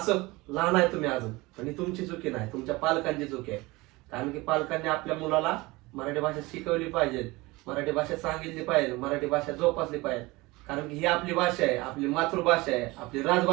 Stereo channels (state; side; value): quieter; left; 22.2 dB